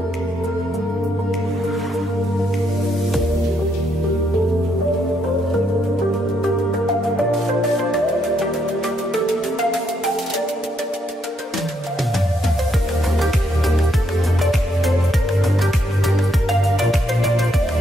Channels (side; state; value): both; normal; correlation 0.75